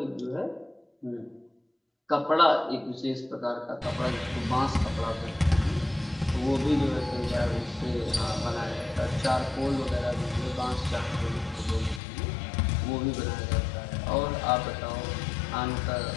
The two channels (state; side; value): drops out; right; at 12.0 s